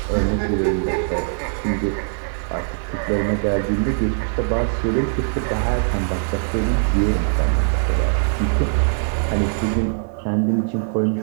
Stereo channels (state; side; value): silent; left; digital silence